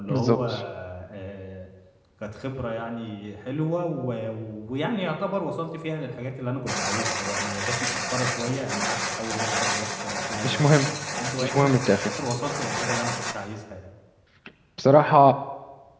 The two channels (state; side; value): identical; both; correlation 1.00